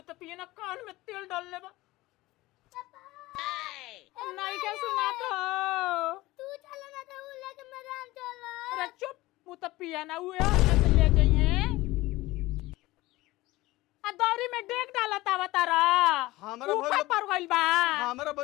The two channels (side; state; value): right; quieter; 19.1 dB